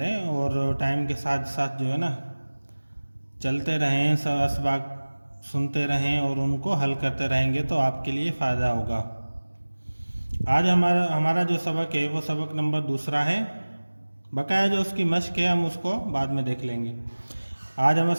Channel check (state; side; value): inverted; both; correlation -1.00